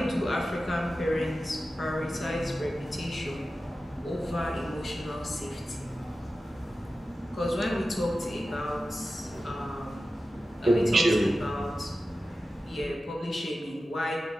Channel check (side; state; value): both; normal; correlation 0.94